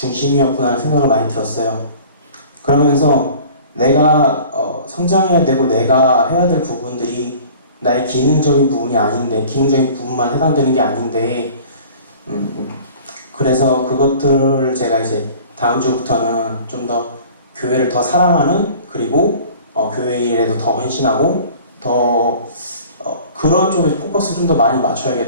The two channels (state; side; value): inverted; both; correlation -0.46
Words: 하는 생각을 많이 들었어요. 그러면서 내가 성장해야 되고 내가 해야 될 부분들이 나의 기능적인 부분이 아닌데, 기능적인 부분만 해당되는 게 아닌데, 그래서 그것들을 제가 이제 다음 주부터는 좀 더 교회를 더 사랑하는, 그리고 교회 일에도 더 헌신하고 더 그런 쪽에 포커스를 좀 더 많이